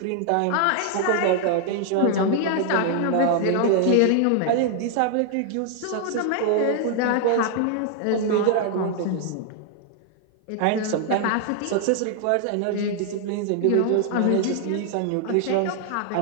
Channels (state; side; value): different; both; correlation 0.00